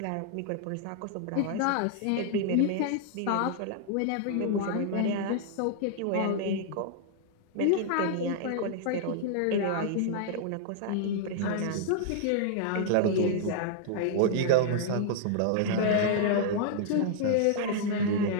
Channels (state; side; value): different; both; correlation -0.01